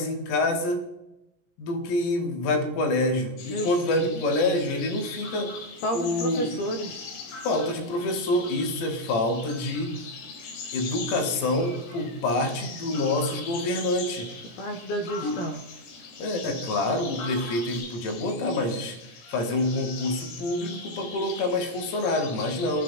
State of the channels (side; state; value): right; late; 17 ms